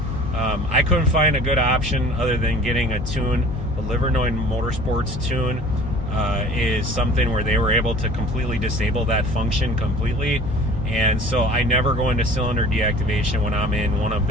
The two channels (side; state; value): left; noise; hum, 9 dB below the sound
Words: I couldn't find a good option other than getting a tune. The Livernois Motorsports tune is something where they were able to completely disable that function completely, and so I never go into cylinder deactivation when I'm in one of